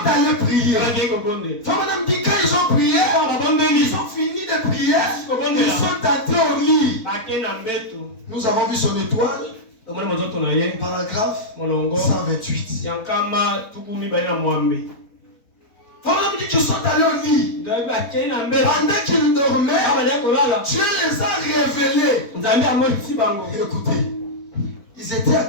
allés prier. Frère Madame dit, quand ils ont prié, ils ont fini de prier, ils sont entrés au lit. Nous avons vu son étoile. Paragraphe 128. Frère dit qu'ils sont allés au lit. Pendant qu'ils dormaient, Dieu les a révélés. Écoutez, ils étaient à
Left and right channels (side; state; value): right; late; 4.1 ms